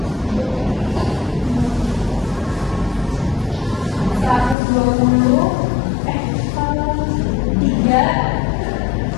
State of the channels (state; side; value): drops out; right; at 4.5 s